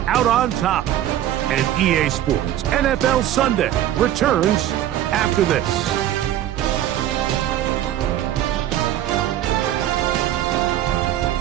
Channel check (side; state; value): left; quieter; 12.2 dB